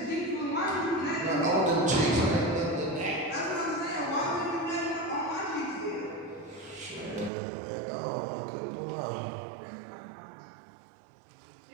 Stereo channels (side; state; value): left; drops out; at 7.3 s